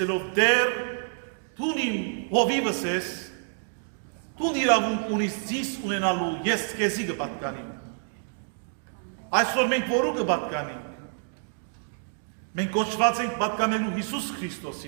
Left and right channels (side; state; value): left; silent; digital silence